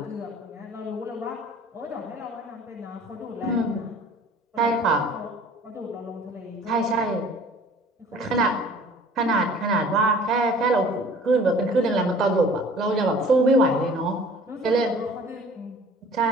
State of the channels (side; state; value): both; normal; correlation 0.49